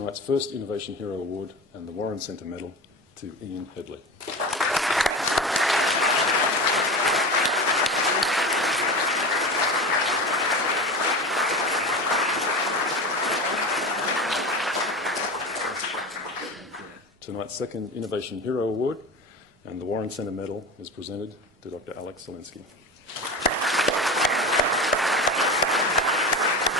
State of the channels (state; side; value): normal; both; correlation 0.28